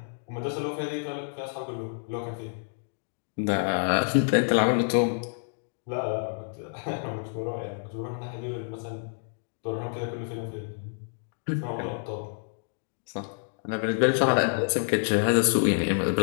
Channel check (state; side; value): silent; right; digital silence